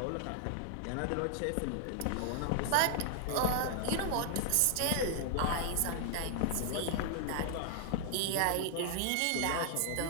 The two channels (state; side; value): different; both; correlation 0.00